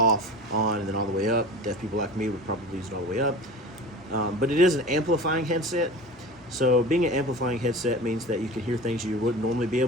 on, and then all the way up. Deaf people like me would probably use it all the way up. But it is an amplifying headset. So being an amplifying headset means that you can hear things you wouldn't normally be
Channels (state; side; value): normal; both; correlation 0.35